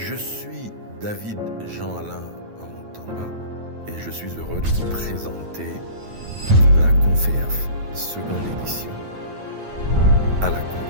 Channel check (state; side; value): late; left; 9.2 ms